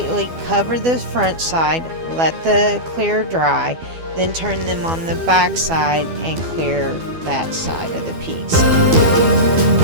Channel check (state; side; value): late; left; 12 ms